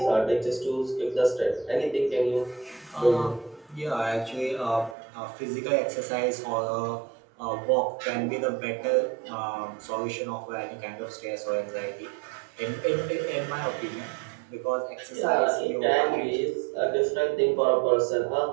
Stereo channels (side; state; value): left; drops out; at 5.0 s